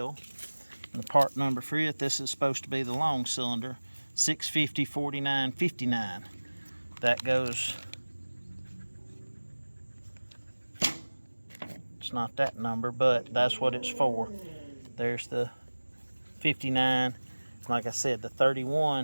And the part number for it, this is supposed to be the long cylinder, 650 4959. That goes, it's not that number, but that's what it's for. There's the 59, like I said, the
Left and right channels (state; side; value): inverted; both; correlation -1.00